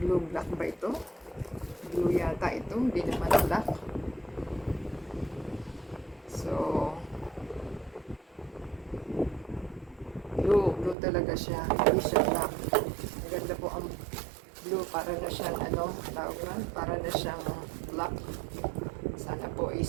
Blue black ba ito? Blue yata ito. Hindi naman black. So, blue talaga siya. Hindi siya black. Maganda po ang blue. Para na siyang tawag na? Para na siyang black. Sana po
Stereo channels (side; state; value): left; drops out; at 11.0 s